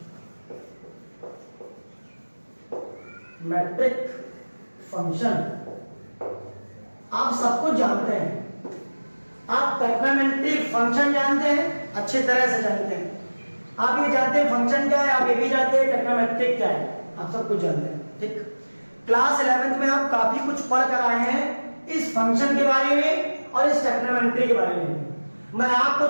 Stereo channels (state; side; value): inverted; both; correlation -1.00